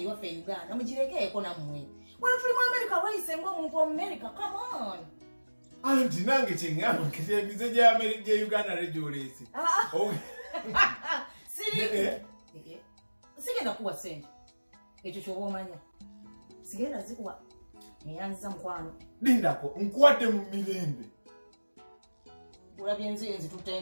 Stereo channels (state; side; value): inverted; both; correlation -1.00